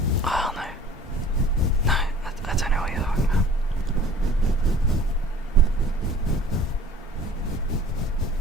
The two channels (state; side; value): normal; both; correlation 0.49